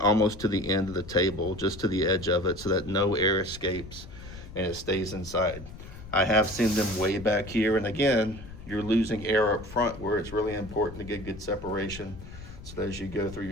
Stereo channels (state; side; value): noise; left; rumble, 14 dB below the sound